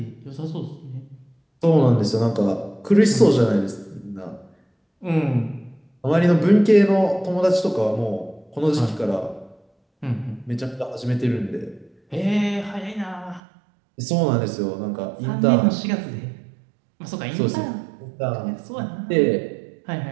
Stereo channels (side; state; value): left; drops out; at 13.4 s